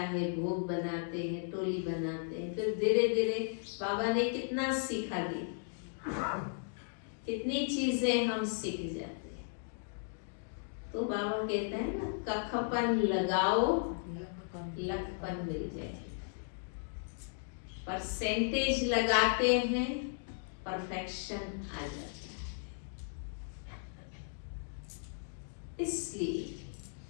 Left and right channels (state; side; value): silent; right; digital silence